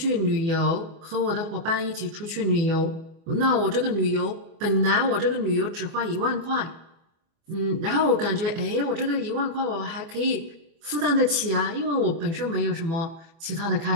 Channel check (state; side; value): late; left; 24 ms